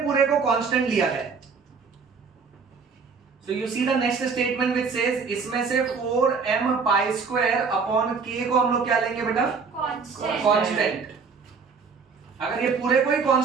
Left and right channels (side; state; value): left; quieter; 5.3 dB